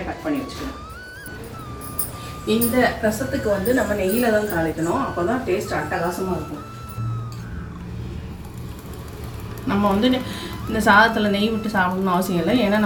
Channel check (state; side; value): identical; both; correlation 1.00